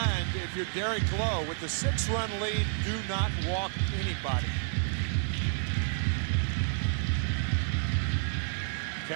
if you're Derek Lowe, with the 6-run lead, do not walk anybody.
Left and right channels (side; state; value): left; silent; 58 dB below the other